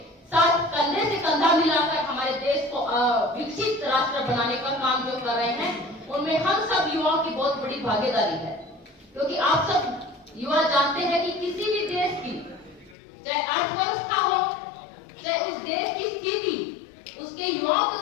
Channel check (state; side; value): drops out; right; at 13.0 s